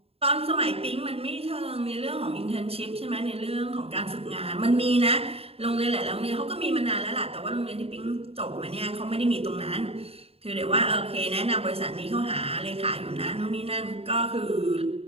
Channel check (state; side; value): late; left; 0.29 ms